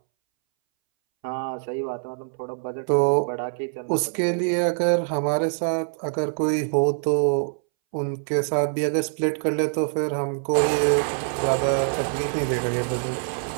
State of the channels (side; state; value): left; silent; 62 dB below the other